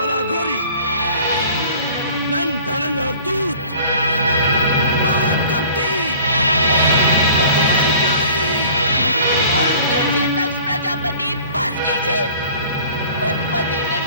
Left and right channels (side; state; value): both; inverted; correlation -0.47